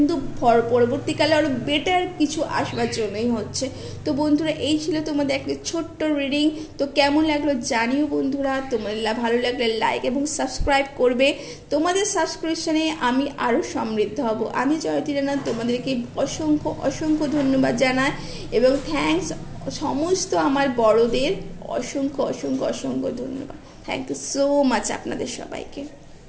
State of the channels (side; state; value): both; identical; correlation 1.00